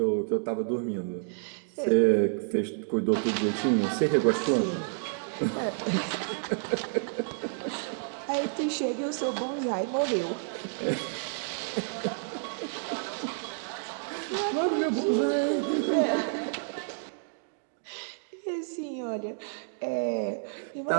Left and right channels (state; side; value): silent; left; digital silence